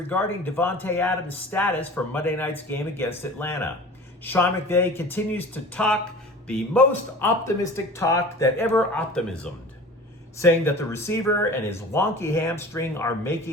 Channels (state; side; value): normal; both; correlation 0.40